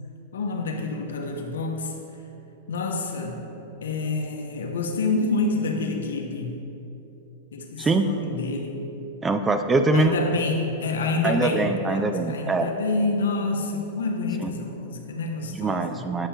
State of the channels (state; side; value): normal; both; correlation 0.11